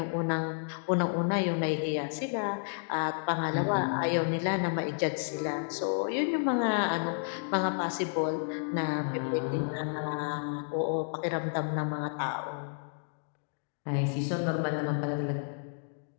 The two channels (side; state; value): right; silent; digital silence